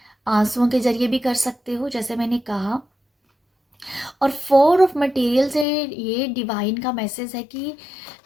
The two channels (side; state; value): right; drops out; at 5.7 s